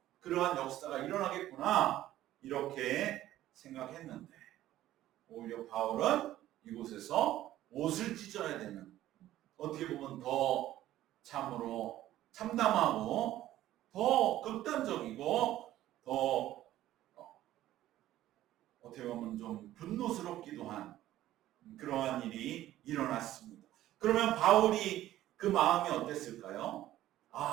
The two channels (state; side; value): quieter; left; 13.9 dB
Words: 그러한 역사가 일어나겠구나 이렇게 생각했는데 오히려 바울은 이곳에서 옷을 찢어야 되는, 어떻게 보면 더 참으로 참담하고 더 극단적이고 더 어떻게 보면 좀 분노스럽기도 한 그러한 일이 일어났습니다. 그러면 바울이 그 마음이 어땠을까요?